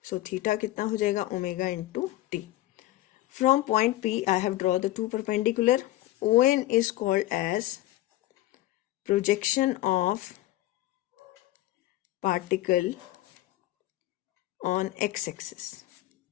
So theta kitna ho jayega? Omega into t. From point P, I have drawn the two perpendicular. ON is called as projection of particle on x-axis.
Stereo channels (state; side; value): quieter; right; 15.9 dB